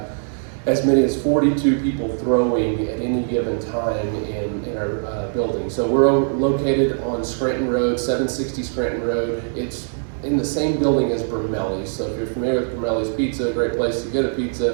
as many as 42 people throwing at any given time in our building. So we're located on Scranton Road, 760 Scranton Road. It's in the same building as Brumelli's. So if you're familiar with Brumelli's Pizza, a great place to get a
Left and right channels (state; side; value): silent; left; digital silence